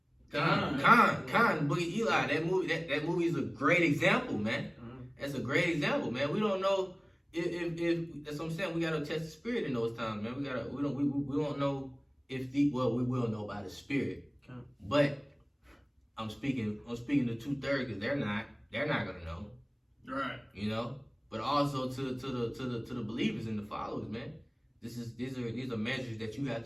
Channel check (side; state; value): both; identical; correlation 1.00